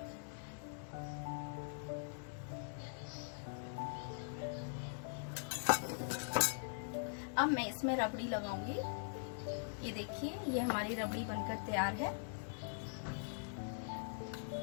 अब मैं इसमें रबड़ी लगाऊंगी। ये देखिए ये हमारी रबड़ी बनकर तैयार है।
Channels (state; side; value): silent; right; digital silence